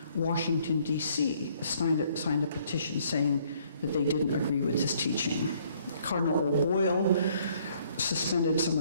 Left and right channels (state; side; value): inverted; both; correlation -0.64